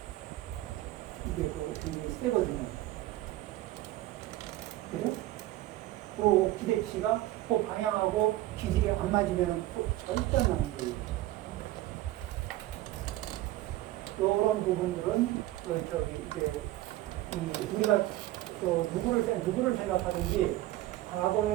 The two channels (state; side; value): quieter; left; 16.0 dB